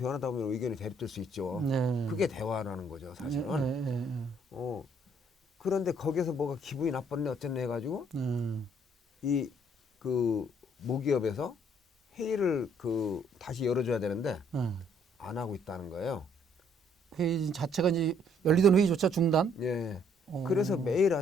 보면 의견이 대립될 수 있죠. 네. 그게 대화라는 거죠, 사실은. 그런데 거기서 뭐가 기분이 나빴네 어쨌네 해가지고 이 그 모기업에서 회의를 그 다시 열어줘야 되는데 안 하고 있다는 거예요. 회의 자체가 이제 열리던 회의조차 중단? 예. 그래서 매일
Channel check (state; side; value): normal; both; correlation 0.65